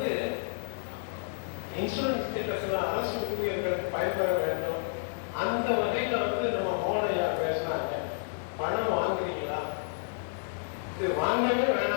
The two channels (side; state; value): right; silent; digital silence